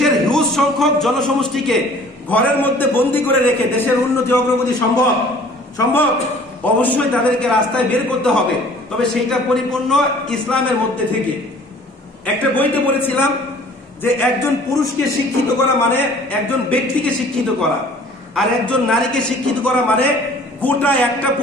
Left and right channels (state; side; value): normal; both; correlation 0.51